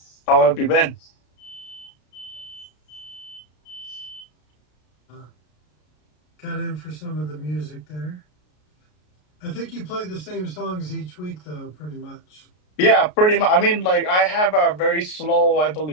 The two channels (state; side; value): late; right; 33 ms